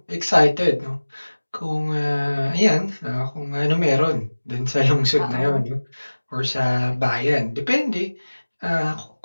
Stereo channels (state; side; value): inverted; both; correlation -1.00